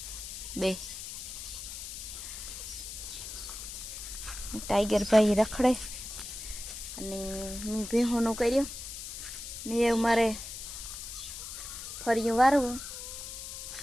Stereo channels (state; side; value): noise; left; hiss, 8 dB below the sound